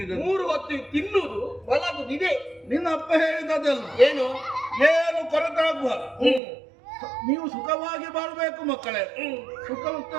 3 ಹೊತ್ತು ತಿನ್ನುವುದು ಬದಲಾಗುದಿದೆ. ನಿನ್ನ ಅಪ್ಪ ಹೇಳಿದ್ದಲ್ಲ ಏನು? ಏನು ಕೊರತಾಗಬಾರದು, ನೀವು ಸುಖವಾಗಿ ಬಾಳ್ಬೇಕು ಮಕ್ಕಳೇ. ಸುಖ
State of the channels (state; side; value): drops out; left; at 6.4 s